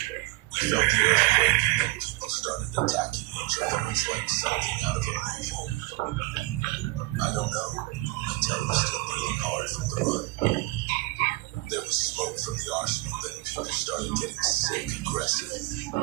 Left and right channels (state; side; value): quieter; left; 21.4 dB